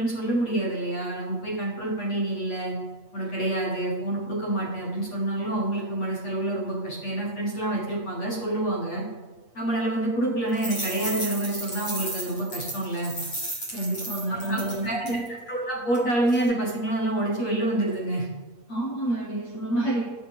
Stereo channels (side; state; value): right; late; 8.4 ms